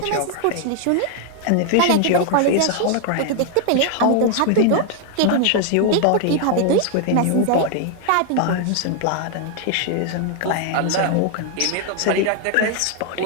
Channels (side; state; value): both; different; correlation 0.00